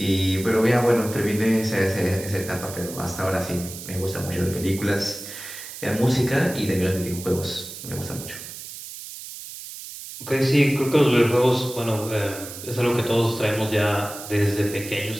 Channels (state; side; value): noise; right; hiss, 12 dB below the sound